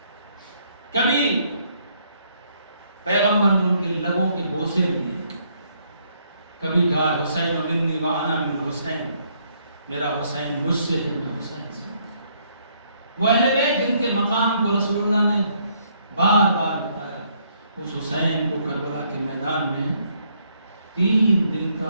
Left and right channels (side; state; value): both; inverted; correlation -0.70